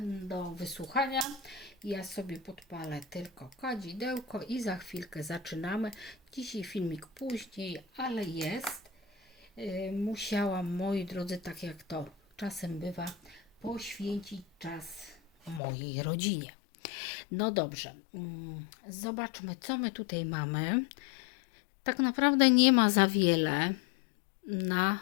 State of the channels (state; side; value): drops out; right; at 15.6 s